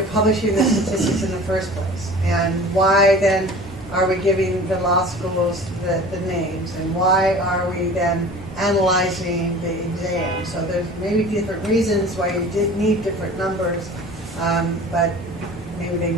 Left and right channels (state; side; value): normal; both; correlation 0.41